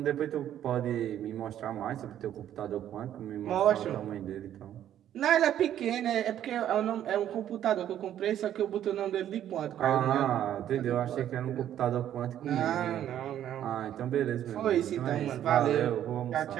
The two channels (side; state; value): left; quieter; 11.0 dB